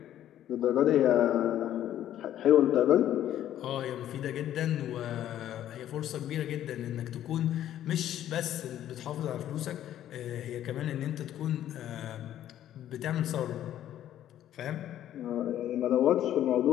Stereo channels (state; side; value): quieter; right; 11.8 dB